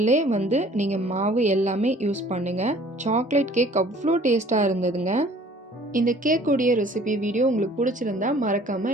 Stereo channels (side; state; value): both; normal; correlation 0.53